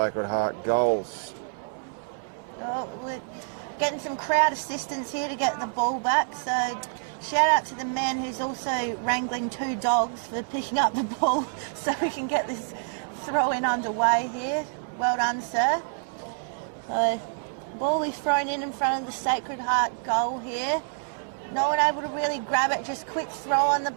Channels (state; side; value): silent; left; digital silence